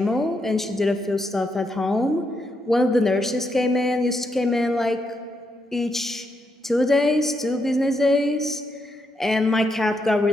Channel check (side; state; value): both; normal; correlation 0.80